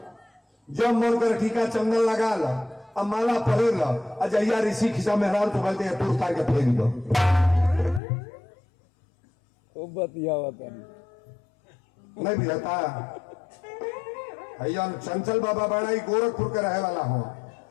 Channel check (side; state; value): right; drops out; at 8.0 s